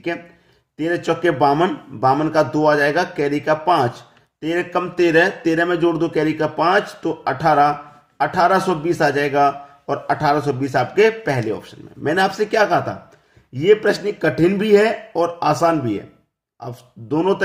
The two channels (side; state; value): both; identical; correlation 1.00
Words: है, 13 चौके 52, 52 का 2 आ जाएगा, कैरी का 5, 13 कम 13, 13 में जोड़ दो कैरी का 5 तो 18, 1820 आ जाएगा। और 1820 आपके पहले ऑप्शन में। मैंने आपसे क्या कहा था, ये प्रश्न कठिन भी है और आसान भी है। अब दोनों